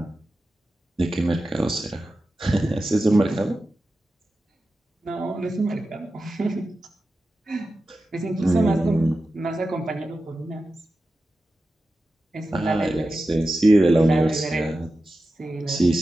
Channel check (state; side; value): normal; both; correlation 0.93